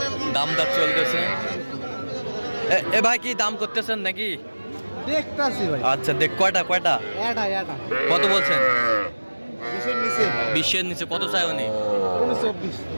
দাম দর চলতেছে। এ ভাই কি দাম করতেছেন নাকি? দেখতাছি ভাই। আচ্ছা, দেখ কয়টা? কত বলছেন? 20-এর নিচে। কত চাই উনি?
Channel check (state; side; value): inverted; both; correlation -1.00